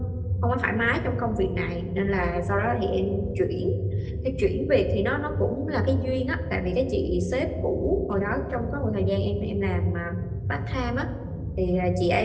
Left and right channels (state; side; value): identical; both; correlation 1.00